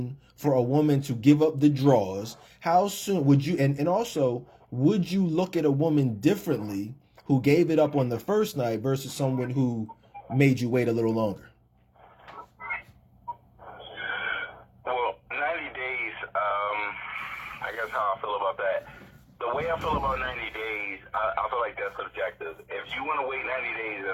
for a woman to give up the draws? How soon would you, and also, would you look at a woman differently who gave it up on the first night versus someone who made you wait a little longer? Well, 90 days, I guess how I feel about that. The way I feel about 90 days, I feel like that's subjective. If you want to wait 90 days,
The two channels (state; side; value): identical; both; correlation 1.00